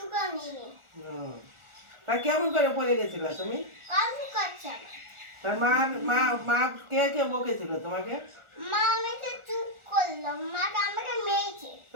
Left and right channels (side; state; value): left; late; 1.4 ms